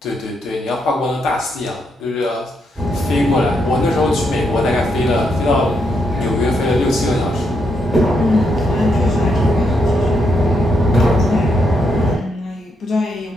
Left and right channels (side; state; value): both; normal; correlation 0.78